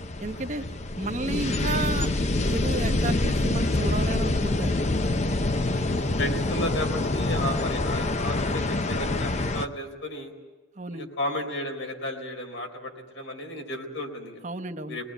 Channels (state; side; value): normal; both; correlation 0.57